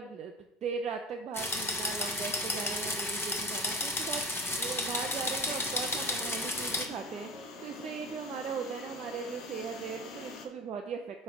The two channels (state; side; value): normal; both; correlation 0.33